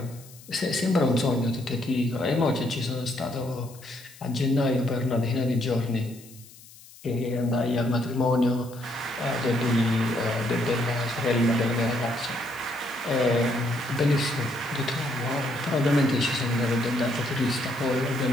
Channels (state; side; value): noise; left; hiss, 21 dB below the sound